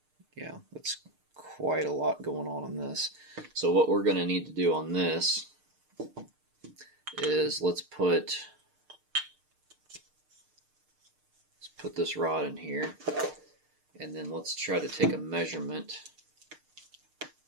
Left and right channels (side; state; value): left; late; 6.6 ms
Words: Yeah, that's quite a lot going on in this. So what we're going to need to do on this is let's put this rod in here, and then let's try to take a measurement.